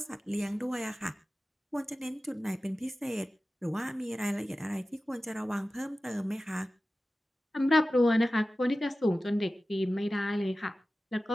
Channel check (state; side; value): normal; both; correlation 0.95